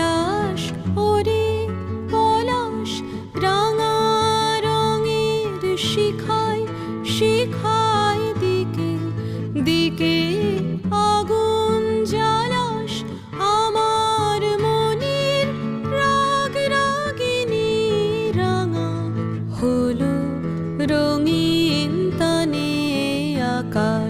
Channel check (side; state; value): both; identical; correlation 1.00